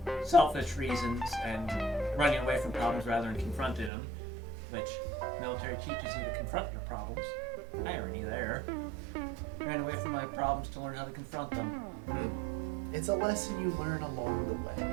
selfish reasons and running away from problems rather than confronting them, which military teaches you to confront your problems. Irony there. Ran away from my problems to learn how to confront them. It's a lesson you learn along the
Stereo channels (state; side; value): drops out; left; at 3.9 s